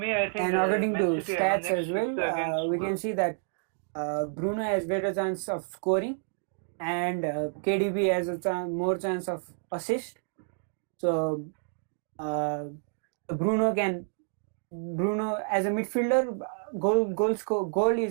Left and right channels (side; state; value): left; silent; digital silence